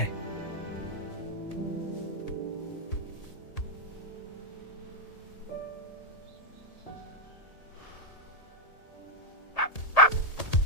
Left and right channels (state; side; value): late; right; 1.8 ms